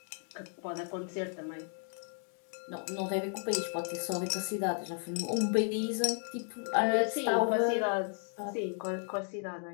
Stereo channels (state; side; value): silent; right; 55 dB below the other